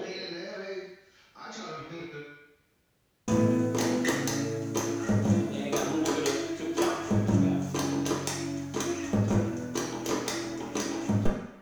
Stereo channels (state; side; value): identical; both; correlation 1.00